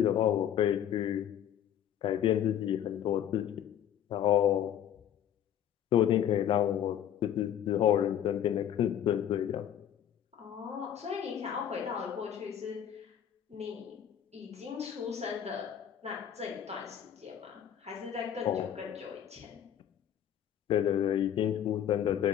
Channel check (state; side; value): quieter; right; 10.0 dB